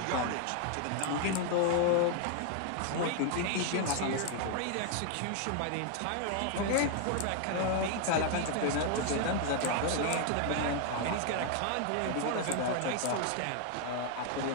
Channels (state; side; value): different; both; correlation 0.00